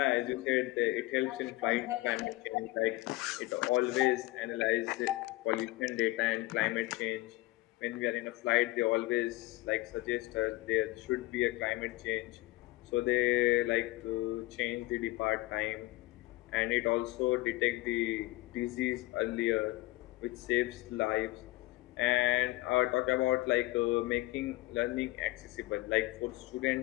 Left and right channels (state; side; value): quieter; right; 19.7 dB